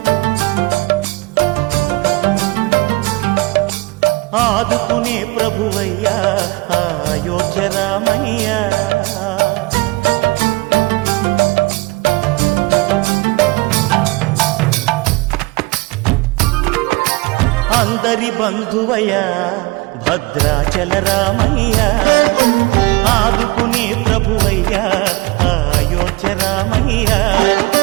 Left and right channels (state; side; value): quieter; left; 24.1 dB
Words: ఆదుకునే ప్రభువయ్య అయోధ్య రామయ్య. అందరి బంధువయ్య భద్రాచల రామయ్య, ఆదుకునే ప్రభువయ్య అయోధ్య రామయ్య.